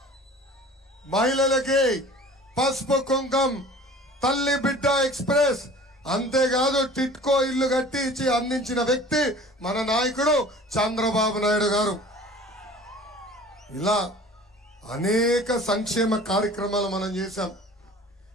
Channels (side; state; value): both; normal; correlation 0.44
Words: మహిళలకి పసుపు కుంకం, తల్లి బిడ్డ ఎక్స్ప్రెస్, అంతేకాదు టిట్కో ఇల్లు కట్టి ఇచ్చి అందించిన వ్యక్తి మన నాయకుడు చంద్రబాబు నాయుడు గారు. ఇలా అనేక సంక్షేమ కార్యక్రమాలు మనం చేశాం.